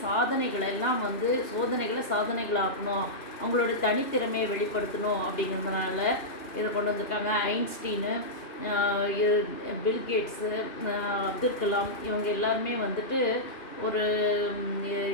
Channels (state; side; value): late; right; 2.8 ms